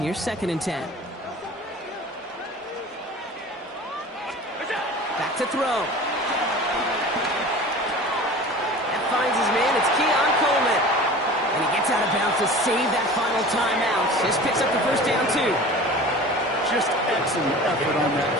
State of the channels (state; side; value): normal; both; correlation 0.39